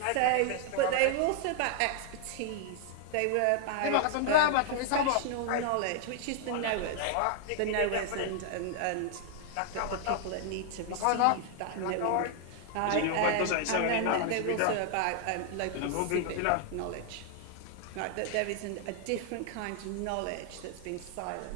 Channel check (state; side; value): different; both; correlation 0.00